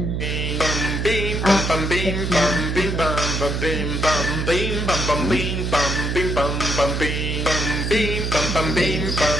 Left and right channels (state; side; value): noise; right; hum, 1 dB below the sound